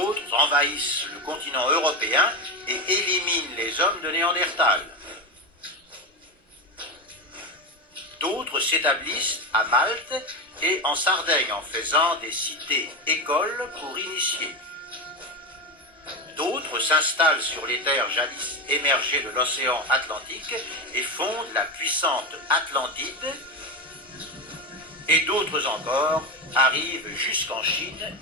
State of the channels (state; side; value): normal; both; correlation 0.17